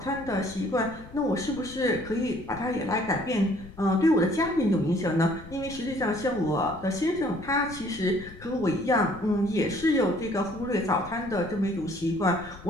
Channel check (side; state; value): left; noise; rumble, 17 dB below the sound